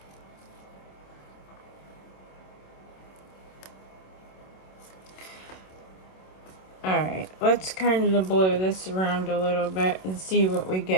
Alright, let's kind of blow this around a little bit and see what we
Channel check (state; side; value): late; right; 27 ms